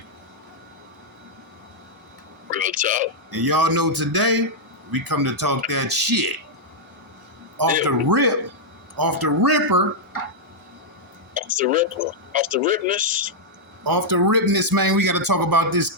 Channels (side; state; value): both; normal; correlation -0.05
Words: Real talk. And y'all know today, we come to talk that shit. Off the ripper. Off the ripness. Off the ripness, man. We got to talk about this